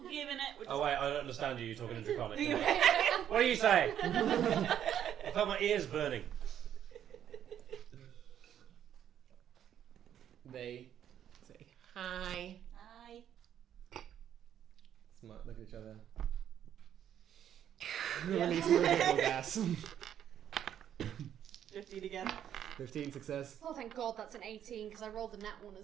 giving it. We're Oh wait, I don't understand you. You're talking in Draconic. What do you say? I felt my ears burning. They say hi. Hi. Look at each other. Release more giggle gas. 15 again. 15 success. Oh, thank God, that's an 18 because I rolled a nat one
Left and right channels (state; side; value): quieter; left; 10.0 dB